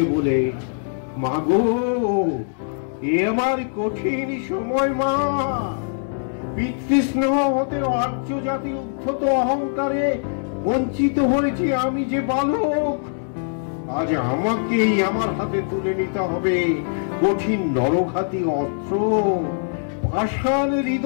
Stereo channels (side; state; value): right; silent; digital silence